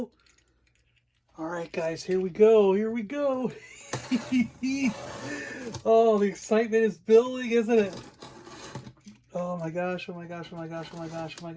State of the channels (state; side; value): identical; both; correlation 1.00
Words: All right, guys, here we go. Here we go. Oh, the excitement is building, isn't it? Oh my gosh, oh my gosh, oh my gosh, oh my gosh, oh my